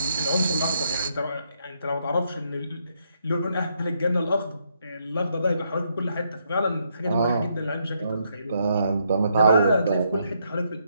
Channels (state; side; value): inverted; both; correlation -0.75